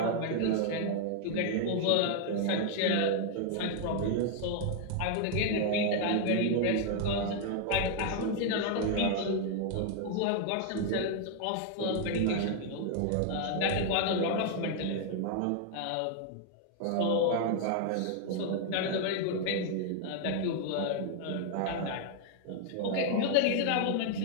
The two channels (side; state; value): both; different; correlation 0.00